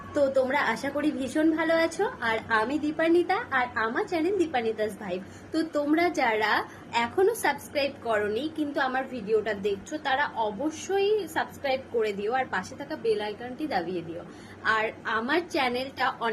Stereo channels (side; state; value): both; identical; correlation 1.00